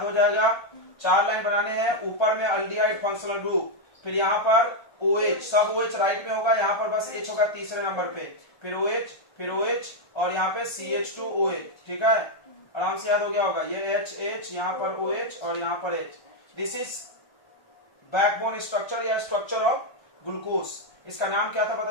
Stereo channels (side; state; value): right; late; 1.3 ms